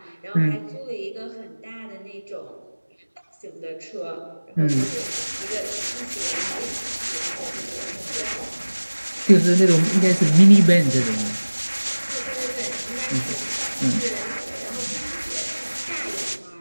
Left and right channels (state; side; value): inverted; both; correlation -1.00